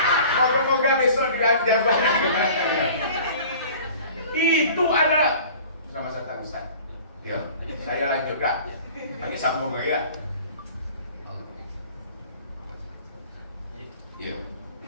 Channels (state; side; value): inverted; both; correlation -0.46